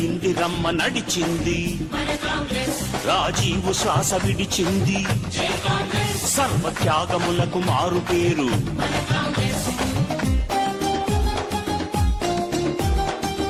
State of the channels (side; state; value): both; identical; correlation 1.00